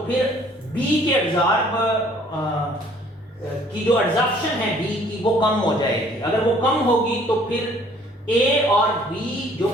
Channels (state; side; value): normal; both; correlation 0.58